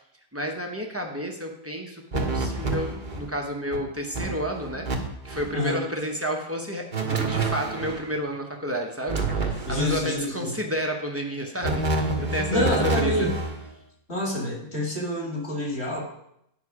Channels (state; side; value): normal; both; correlation 0.03